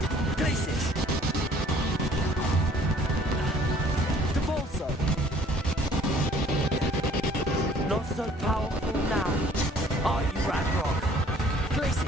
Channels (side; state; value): both; normal; correlation 0.56